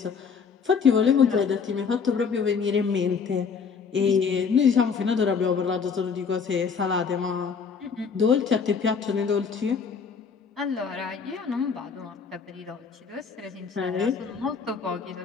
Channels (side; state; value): right; quieter; 5.9 dB